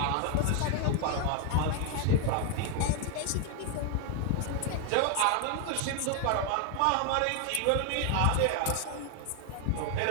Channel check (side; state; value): both; different; correlation 0.00